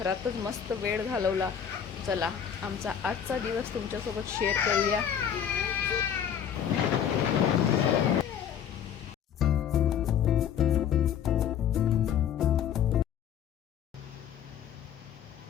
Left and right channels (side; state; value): right; quieter; 8.6 dB